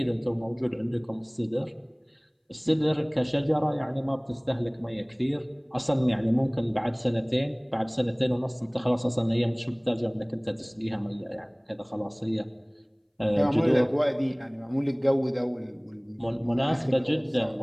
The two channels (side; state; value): both; identical; correlation 1.00